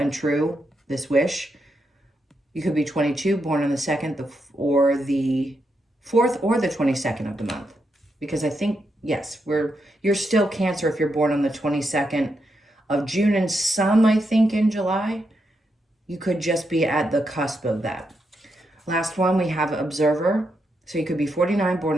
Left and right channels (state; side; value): normal; both; correlation 0.83